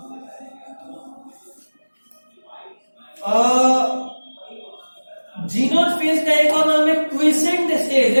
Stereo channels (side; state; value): both; inverted; correlation -1.00